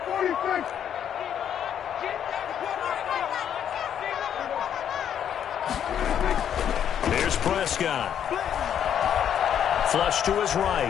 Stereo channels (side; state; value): right; quieter; 9.2 dB